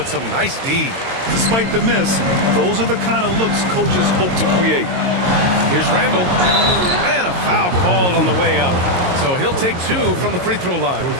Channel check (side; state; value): left; late; 22 ms